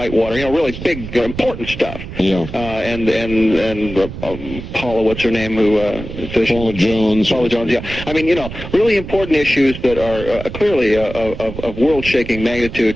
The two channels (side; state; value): right; noise; rumble, 10 dB below the sound